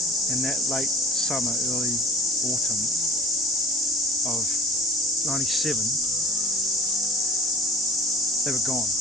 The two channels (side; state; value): both; normal; correlation 0.45